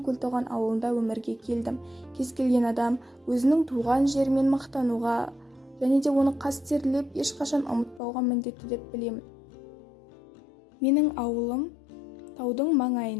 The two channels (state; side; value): drops out; right; at 8.0 s